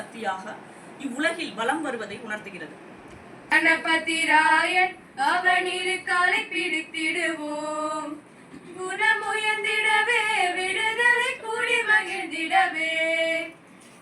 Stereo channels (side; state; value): both; identical; correlation 1.00